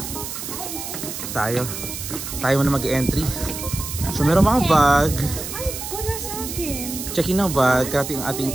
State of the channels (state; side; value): noise; right; hiss, 7 dB below the sound